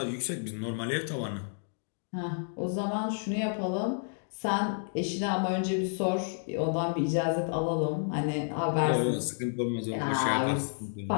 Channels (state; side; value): silent; right; digital silence